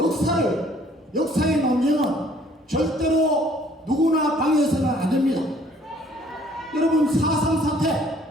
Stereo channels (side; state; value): both; normal; correlation 0.59